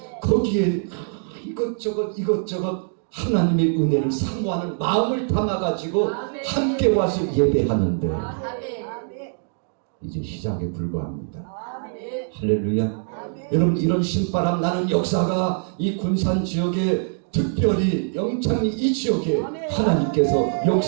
거기에 이것저것 하나님의 은혜를 사모하는 마음을 담아가지고 함께 와서 예배하는데 아멘. 이제 시작에 불과합니다. 아멘. 할렐루야. 여러분, 이런 신바람 나는 역사가 이 군산 지역에, 특별히 영창리 이 지역에 하나님께서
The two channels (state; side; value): silent; left; 63 dB below the other